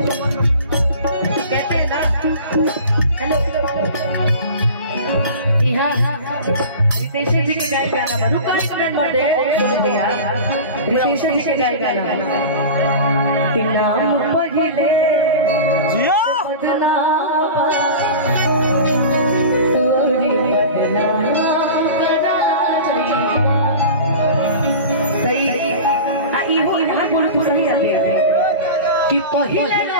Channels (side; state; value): both; inverted; correlation -0.34